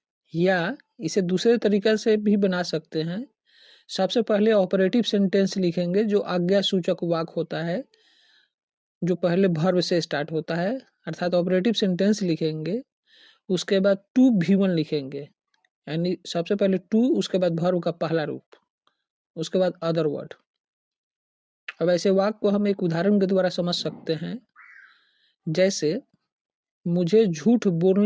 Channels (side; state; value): both; identical; correlation 1.00